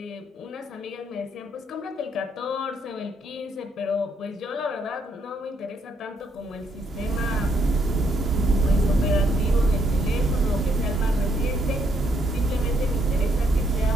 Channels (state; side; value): normal; both; correlation 0.72